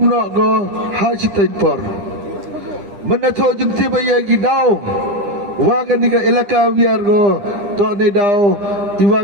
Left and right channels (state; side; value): late; left; 9.9 ms